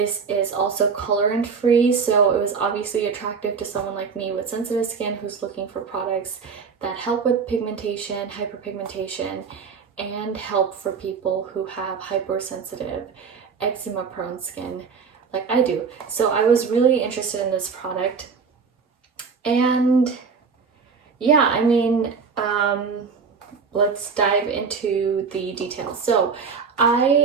is also colorant free, so it was obviously attractive to someone like me with sensitive skin who's looking for products that help with pigmentation, hyperpigmentation, and help for people who have hypersensitive, eczema prone skin like I do. So I was really interested in this product, and yeah, let's dive into the details. So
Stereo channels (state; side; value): quieter; left; 5.5 dB